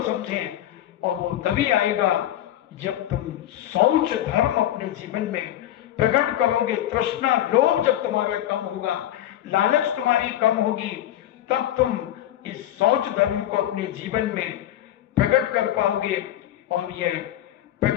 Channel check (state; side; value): quieter; right; 12.6 dB